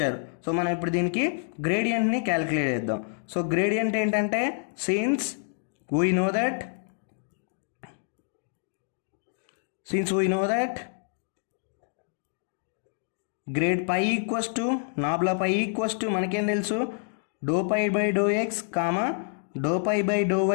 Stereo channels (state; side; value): silent; right; digital silence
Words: So మనం ఇప్పుడు దీనికి గ్రేడియంట్ని క్యాలిక్యులేట్ చేద్దాం. సో గ్రేడియంట్ ఏంటంటే since we know that grad pi equals to nabla pi equals to మనకేం తెలుసు, do pi by do x comma do pi by do